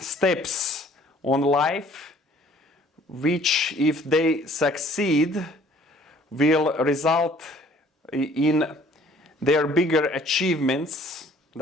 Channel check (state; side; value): normal; both; correlation 0.56